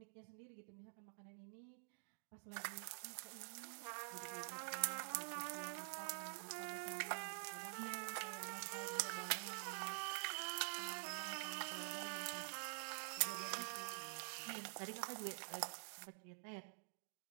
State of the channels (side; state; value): left; silent; digital silence